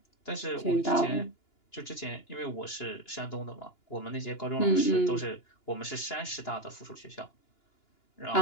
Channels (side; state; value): right; late; 2.9 ms